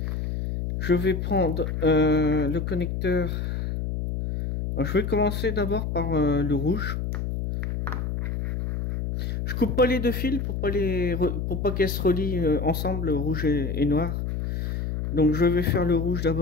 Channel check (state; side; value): noise; left; hum, 2 dB below the sound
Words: Je vais prendre le connecteur. Alors, je vais commencer d'abord par le rouge. Je coupe pas les deux fils pour pas qu'elles se relient ensemble, rouge et noir. Donc je vais faire le rouge